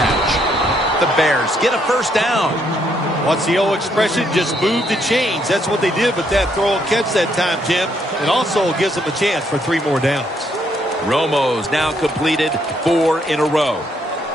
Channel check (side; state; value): both; normal; correlation 0.72